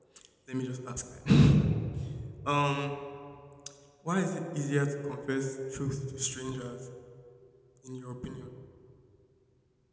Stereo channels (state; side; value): identical; both; correlation 1.00